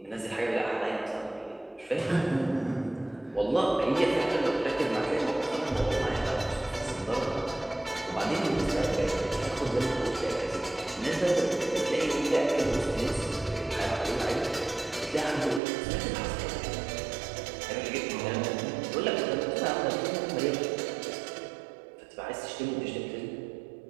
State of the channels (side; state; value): left; drops out; at 15.6 s